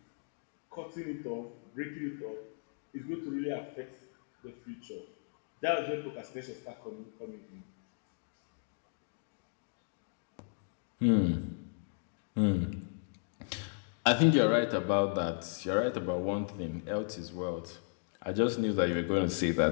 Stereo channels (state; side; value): silent; right; digital silence